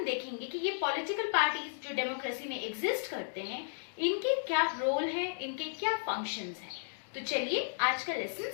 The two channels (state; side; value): silent; right; digital silence